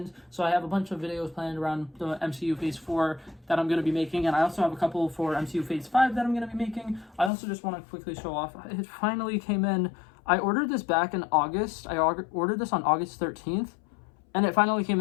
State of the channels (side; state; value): right; drops out; at 7.3 s